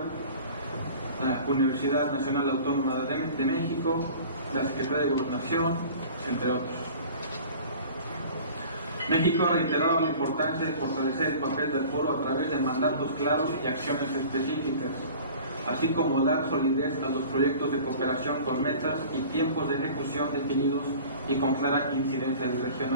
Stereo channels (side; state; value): both; inverted; correlation -0.43